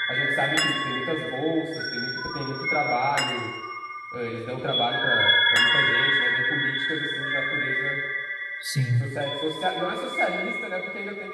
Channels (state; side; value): identical; both; correlation 1.00